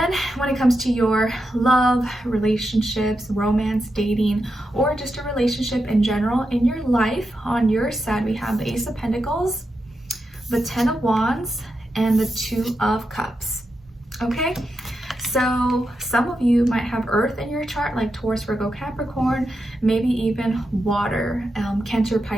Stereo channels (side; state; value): both; normal; correlation 0.87